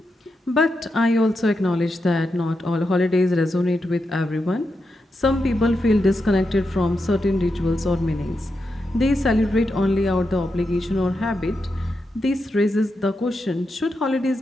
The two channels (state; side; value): normal; both; correlation 0.86